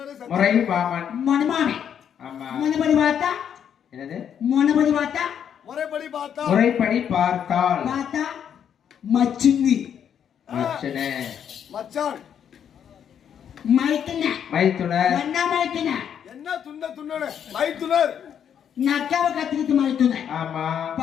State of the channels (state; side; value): quieter; right; 8.6 dB